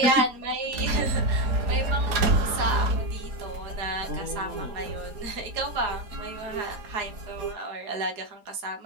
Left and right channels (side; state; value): left; late; 4.2 ms